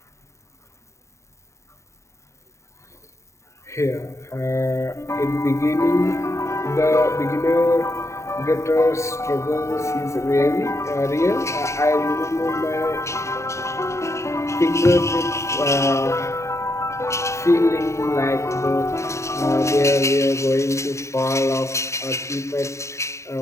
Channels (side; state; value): right; late; 0.14 ms